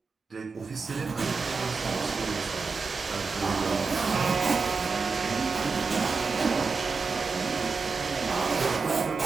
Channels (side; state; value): left; quieter; 4.6 dB